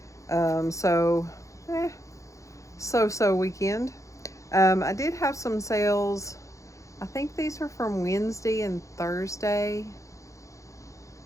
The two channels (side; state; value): right; late; 0.15 ms